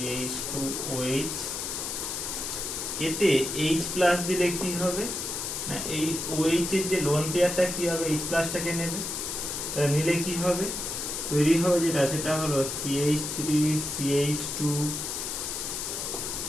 এতে H প্লাস দিলে কি হবে না, এই OH এর যে লোন পেয়ারটা কি হবে, H প্লাসটাকে নেবে, তাহলে নিলে কি হবে, তৈরি হবে যেটা সেটা হলো CH3 CH2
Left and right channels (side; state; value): left; noise; hiss, 4 dB below the sound